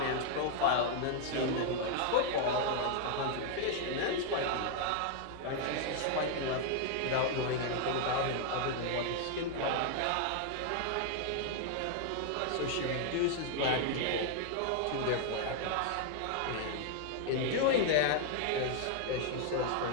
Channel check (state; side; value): different; both; correlation 0.00